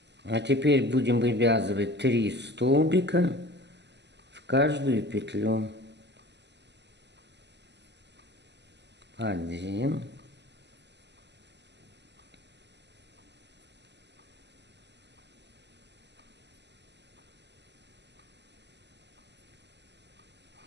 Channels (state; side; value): late; left; 0.50 ms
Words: А теперь будем вывязывать 3 столбика в каждую петлю. 1,